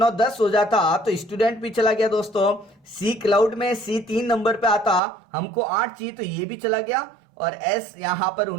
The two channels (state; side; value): drops out; left; at 5.0 s